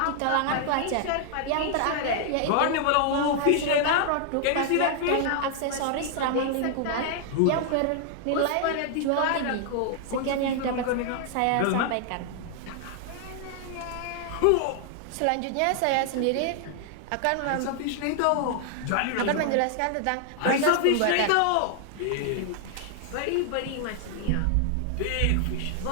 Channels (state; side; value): different; both; correlation 0.00